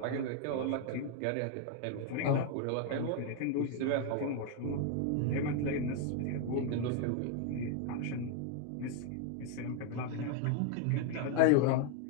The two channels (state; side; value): different; both; correlation 0.01